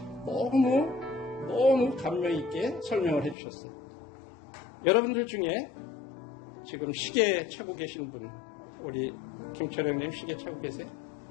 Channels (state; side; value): drops out; right; at 3.4 s